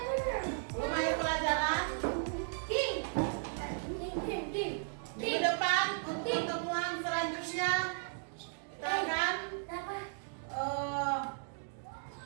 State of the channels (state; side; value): silent; left; digital silence